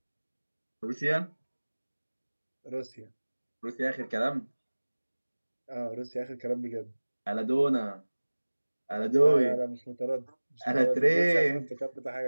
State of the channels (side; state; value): both; inverted; correlation -1.00